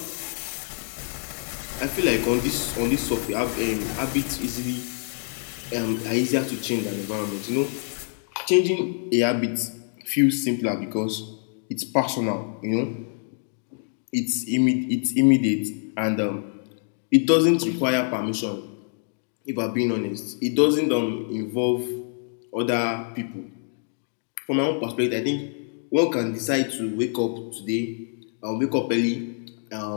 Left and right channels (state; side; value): silent; right; 59 dB below the other